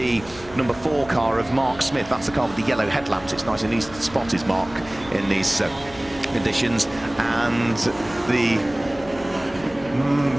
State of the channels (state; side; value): noise; left; hum, 19 dB below the sound